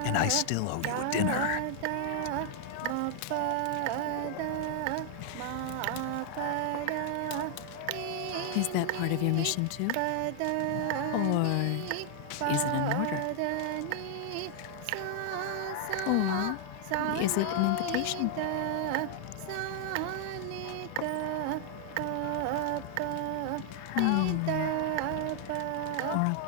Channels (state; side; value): different; both; correlation 0.00